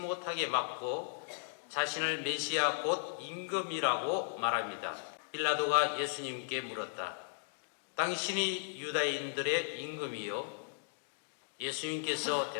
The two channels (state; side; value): silent; right; digital silence